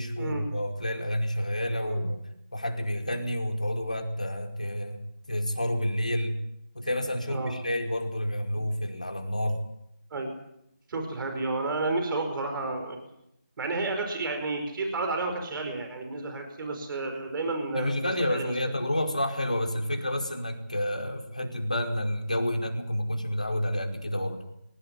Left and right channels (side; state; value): both; inverted; correlation -0.82